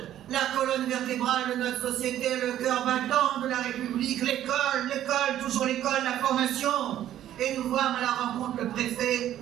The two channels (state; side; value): quieter; left; 12.0 dB